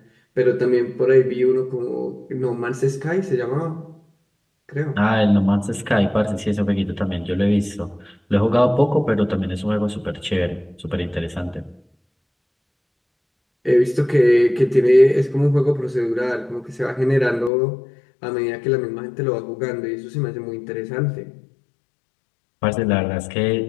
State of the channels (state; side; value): drops out; right; at 17.5 s